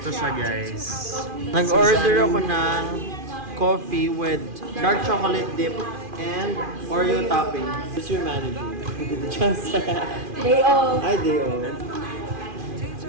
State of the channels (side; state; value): left; late; 2.4 ms